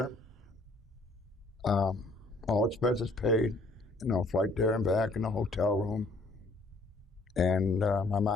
all expenses paid, flight there and back in the hotel room. And my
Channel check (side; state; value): right; quieter; 3.0 dB